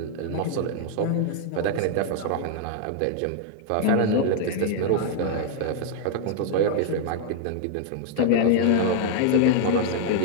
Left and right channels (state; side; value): different; both; correlation -0.01